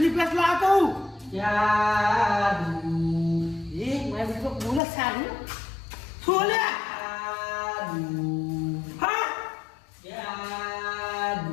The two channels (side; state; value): right; drops out; at 4.8 s